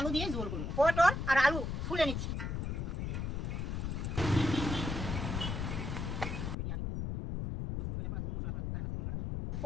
দিয়ে ঝোল করবো। পটল আর আলু ফুলে নিচ্ছি।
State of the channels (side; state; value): left; noise; rumble, 2 dB below the sound